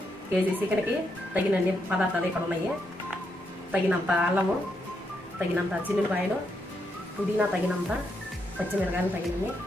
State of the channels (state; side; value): normal; both; correlation 0.80